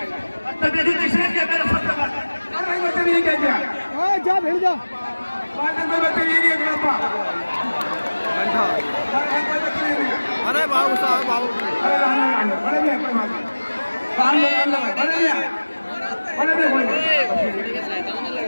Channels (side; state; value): both; inverted; correlation -1.00